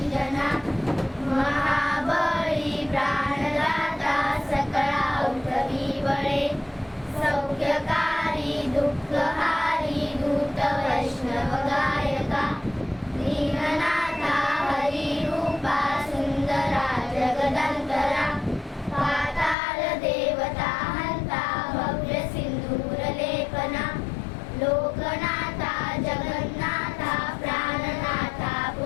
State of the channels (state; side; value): drops out; right; at 19.6 s